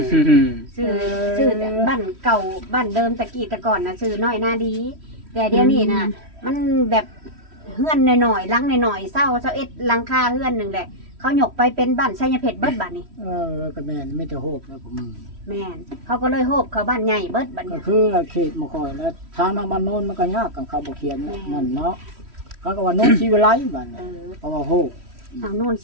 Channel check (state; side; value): late; left; 3.1 ms